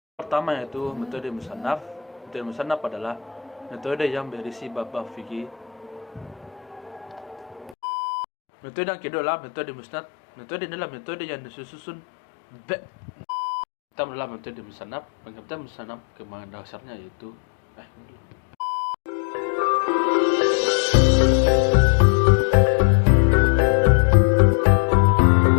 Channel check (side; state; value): right; drops out; at 7.8 s